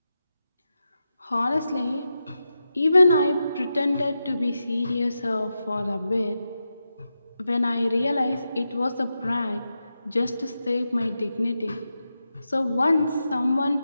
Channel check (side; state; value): both; inverted; correlation -0.89